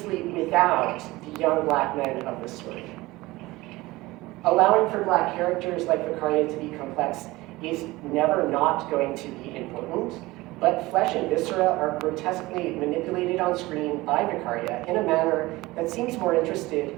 without the young black men of the story. Allowing for black characters like Vicaria to be complex is never not going to be important, but flesh and viscera are grotesquely manipulated on screen by Vicaria in a manner that seems more interested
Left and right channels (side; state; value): left; quieter; 20.0 dB